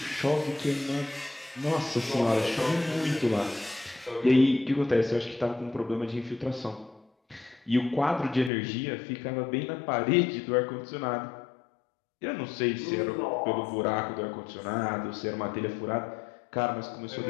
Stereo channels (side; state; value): right; drops out; at 8.5 s